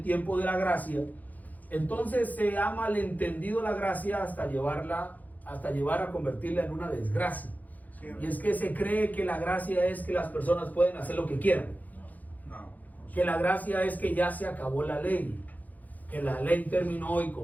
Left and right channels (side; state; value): right; late; 0.080 ms